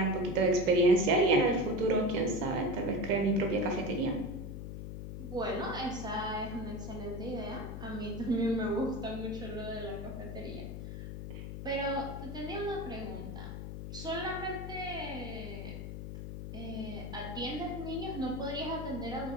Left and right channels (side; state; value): left; noise; hum, 7 dB below the sound